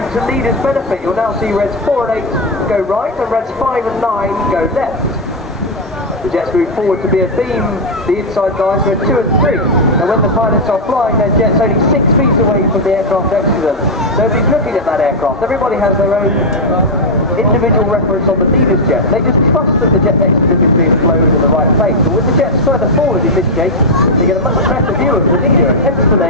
To leaders' benefit, you'll now see reds 4 and 8 go right and reds 5 and 9 go left. The jets move forward to be a beam, the inside guys red 2 and 3. And when the pilots are flying their jets only 6 feet away from the aircraft next to them, nobody's looking at that aircraft. Everybody has their own individual reference on the leader's jet. They just trust that the jet next to them is being flown in the right place. But with the jets further forward in this shape, they get a much better view of the leader, and hence the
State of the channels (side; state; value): both; normal; correlation 0.00